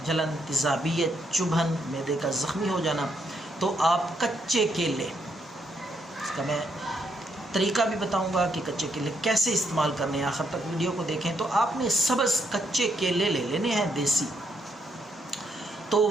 جلن، تیزابیت، چبھن، معدے کا زخمی ہو جانا، تو آپ کچے کیلے، اس کا میں طریقہ بھی بتاؤں گا کہ کچے کیلے کیسے استعمال کرنے ہیں، آخر تک ویڈیو کو دیکھیں۔ تو آپ نے سبز کچے کیلے لے لینے ہیں دیسی، تو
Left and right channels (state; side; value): normal; both; correlation 0.76